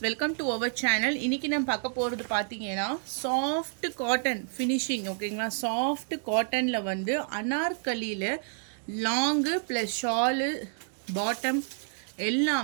welcome to our channel. இன்னைக்கு நம்ம பார்க்க போறது பாத்தீங்கன்னா soft cotton finishing. ஓகேங்களா, soft cottonல வந்து அனார்கலில லாங் plus shawl bottom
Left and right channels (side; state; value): left; silent; 58 dB below the other